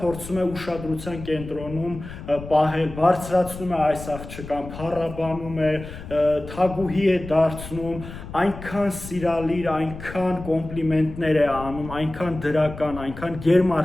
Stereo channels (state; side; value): noise; left; rumble, 12 dB below the sound